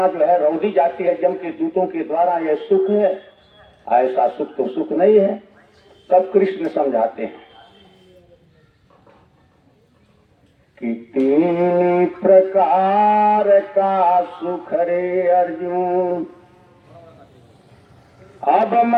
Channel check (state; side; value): identical; both; correlation 1.00